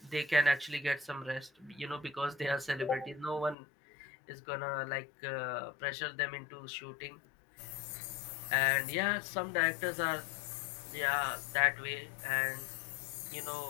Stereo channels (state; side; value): drops out; right; at 3.6 s